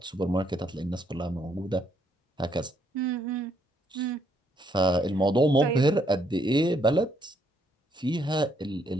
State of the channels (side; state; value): both; normal; correlation 0.72